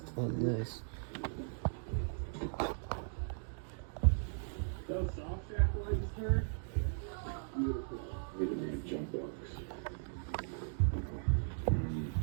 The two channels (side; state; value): left; silent; digital silence